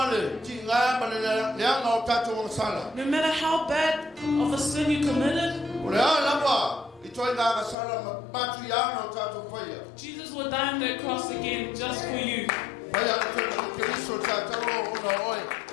le ti ngā ma le leanga o tātou o sala. no matter how bad of a sin you committed, O le alawa i toi ngā sala matu i ana o tātou whaia. Jesus will die on that cross again just for you. Whaia le toi na ki riso tātauro o na oe.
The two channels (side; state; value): right; drops out; at 7.8 s